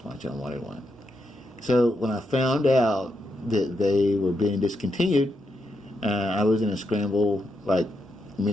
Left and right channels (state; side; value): normal; both; correlation 0.82